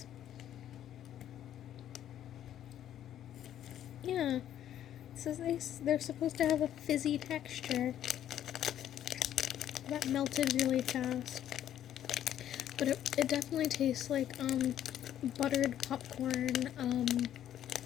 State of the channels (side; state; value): right; quieter; 11.0 dB